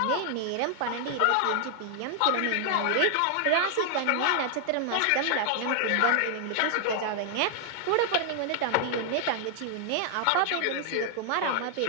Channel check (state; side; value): different; both; correlation 0.00